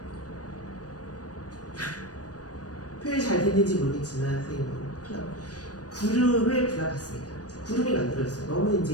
표현이 잘 됐는지 모르겠지만 선생님은 구름을 그려봤습니다. 구름이 만들어졌어요. 너무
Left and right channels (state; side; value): late; right; 0.68 ms